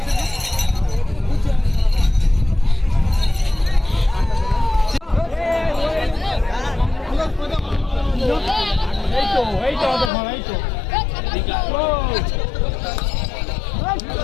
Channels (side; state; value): right; drops out; at 10.1 s